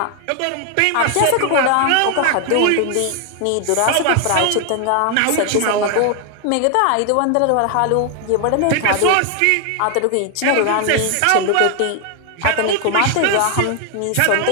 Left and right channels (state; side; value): different; both; correlation 0.00